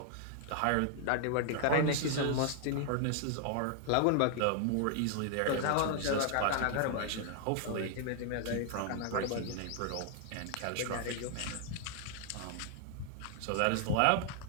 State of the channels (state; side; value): different; both; correlation 0.00